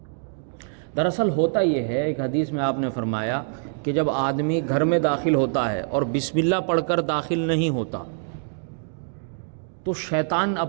دراصل ہوتا یہ ہے، ایک حدیث میں آپ نے فرمایا کہ جب آدمی گھر میں داخل ہوتا ہے اور بسم اللہ پڑھ کر داخل نہیں ہوتا تو شیطان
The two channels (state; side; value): silent; left; 62 dB below the other